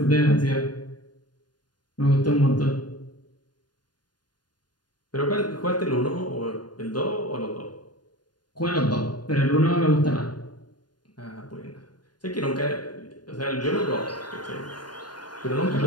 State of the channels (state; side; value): late; right; 0.70 ms